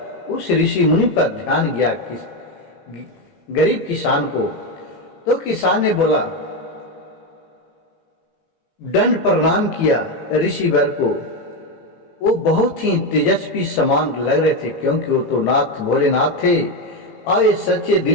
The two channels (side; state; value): right; late; 18 ms